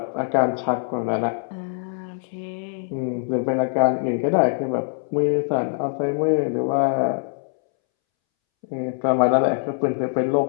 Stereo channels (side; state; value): right; silent; 63 dB below the other